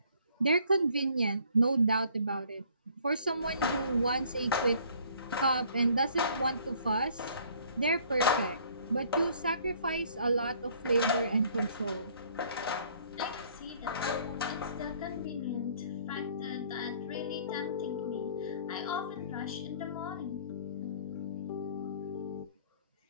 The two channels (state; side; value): inverted; both; correlation -0.58